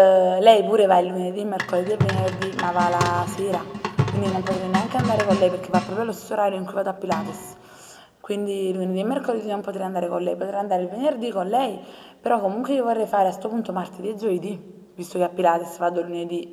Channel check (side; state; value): both; identical; correlation 1.00